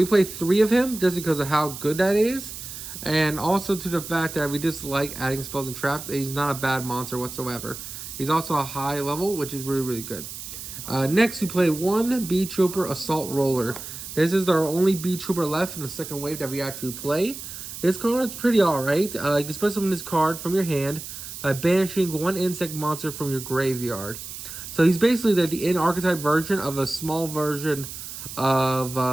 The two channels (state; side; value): noise; right; hiss, 10 dB below the sound